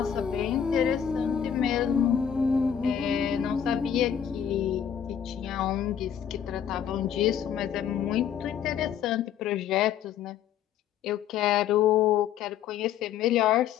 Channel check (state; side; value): quieter; right; 9.0 dB